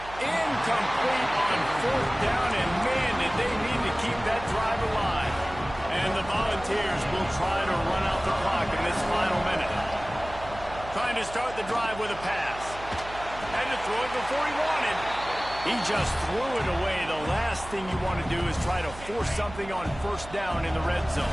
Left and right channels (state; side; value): noise; right; hum, 15 dB below the sound